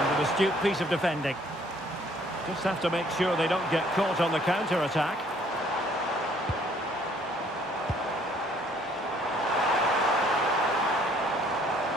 an astute piece of defending. Just have to make sure they don't get caught on the counter-attack.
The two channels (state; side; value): normal; both; correlation 0.61